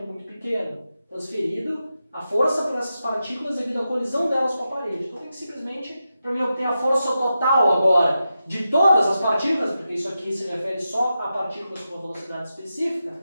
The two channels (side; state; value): both; inverted; correlation -0.89